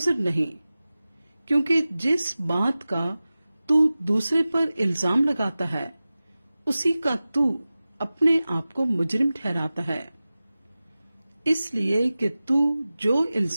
نہیں، کیونکہ جس بات کا تو دوسرے پر الزام لگاتا ہے اسی کا تو اپنے آپ کو مجرم ٹھہراتا ہے، اس لیے کہ تو جو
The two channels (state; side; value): inverted; both; correlation -0.96